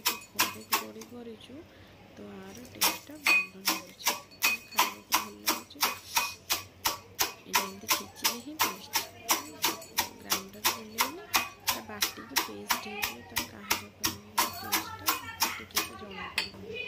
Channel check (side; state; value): both; identical; correlation 1.00